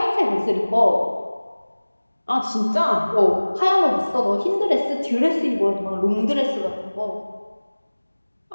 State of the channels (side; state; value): both; inverted; correlation -1.00